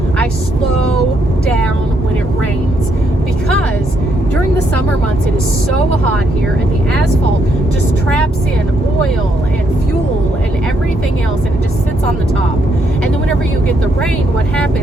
I slow down when it rains because during the summer months, it is so hot here, and the asphalt just traps in oil and fuel and everything else, and it just sits on the top. And then when whenever you get the rain, what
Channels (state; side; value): normal; both; correlation 0.75